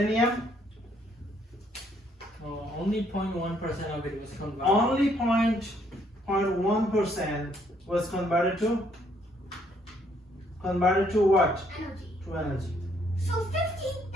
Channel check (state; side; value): normal; both; correlation 0.68